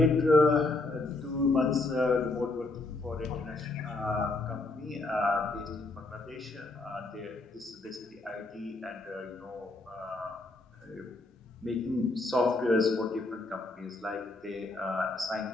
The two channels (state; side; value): quieter; right; 3.1 dB